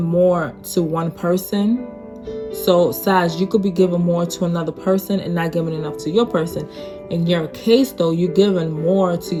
more to one person. So Sag, you could be giving more to another person and not giving enough to your person. In your case though, you're giving more to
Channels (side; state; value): both; identical; correlation 1.00